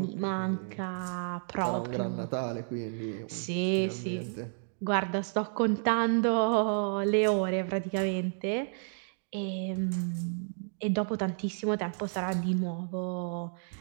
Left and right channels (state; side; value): silent; left; digital silence